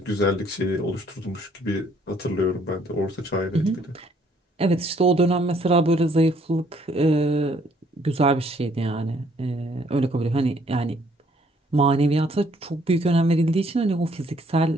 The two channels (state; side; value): normal; both; correlation 0.64